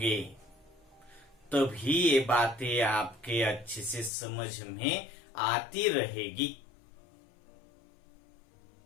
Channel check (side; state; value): right; drops out; at 4.1 s